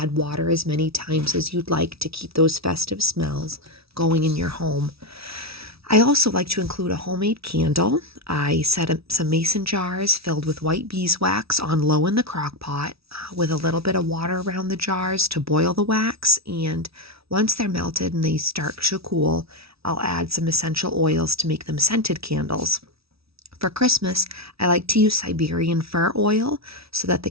water as many times as you'd like to keep those festive smells going in your home. I also like to include a homemade candle. I set up some mason jars filled with white beeswax on low in the crock pot with a little bit of water around the jars to boil the wax. And once they're melted and they start to cool, I'll add some essential oils to make them scented candles. For Christmas, I like to use Siberian fir oil so that the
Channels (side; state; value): left; late; 0.76 ms